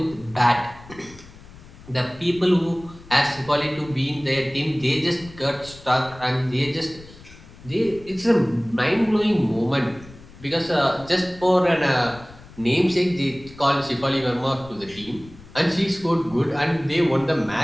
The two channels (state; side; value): noise; left; rumble, 20 dB below the sound